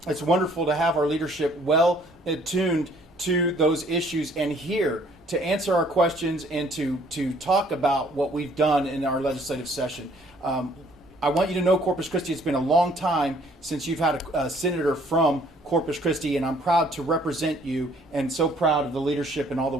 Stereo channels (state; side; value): normal; both; correlation 0.60